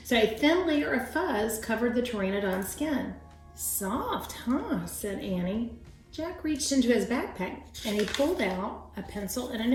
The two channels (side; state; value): both; identical; correlation 1.00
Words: So a thin layer of fuzz covered the pteranodon's skin. Soft, huh? Said Annie. Jack reached into his backpack and he pulled out a pencil and a